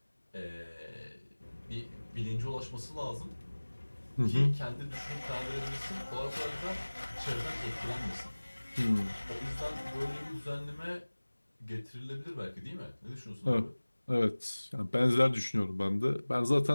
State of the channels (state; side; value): inverted; both; correlation -1.00